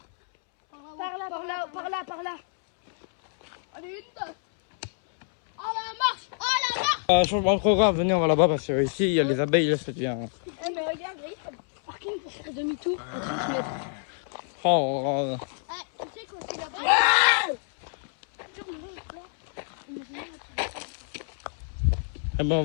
Par là. Allez, une, deux. Oh la marche. Oh la marche. Changement de programme, venez, on va là-bas parce que ici, il y a les abeilles, là, ça devient... Eh, mais regarde, il y a un parking pour faire demi-tour à 30 mètres. Oh, Ah, tu sais qu'aussi là-bas. eh ben, on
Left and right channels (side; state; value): right; silent; 60 dB below the other